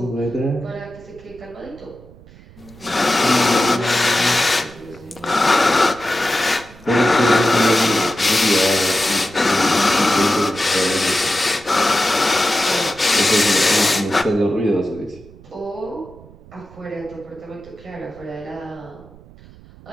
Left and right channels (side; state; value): right; noise; rumble, 22 dB below the sound